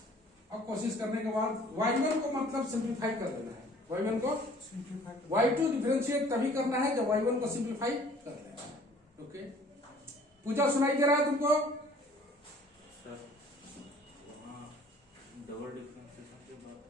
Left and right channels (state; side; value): normal; both; correlation 0.54